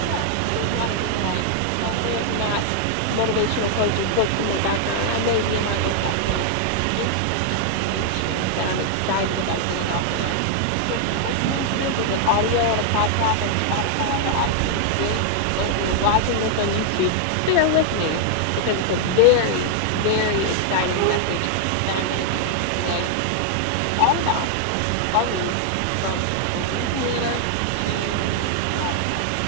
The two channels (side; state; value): both; different; correlation 0.00